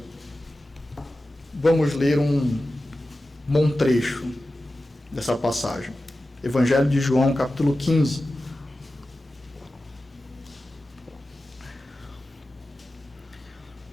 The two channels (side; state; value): both; normal; correlation 0.94